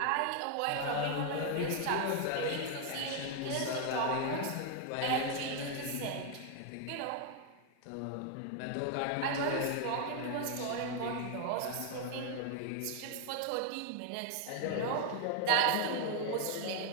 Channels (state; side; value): different; both; correlation 0.00